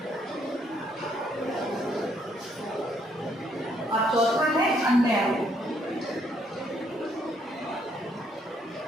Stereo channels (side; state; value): both; normal; correlation 0.70